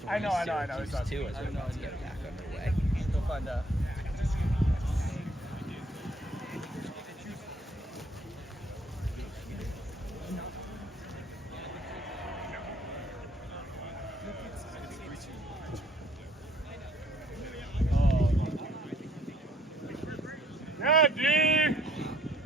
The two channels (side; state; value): both; normal; correlation 0.62